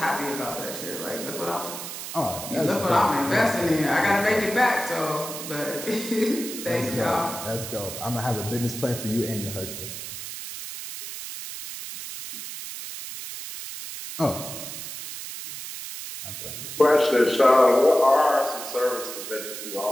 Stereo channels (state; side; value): noise; right; hiss, 9 dB below the sound